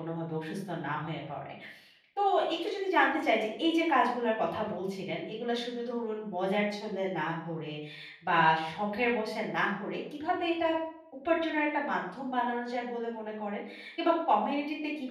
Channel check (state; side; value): identical; both; correlation 1.00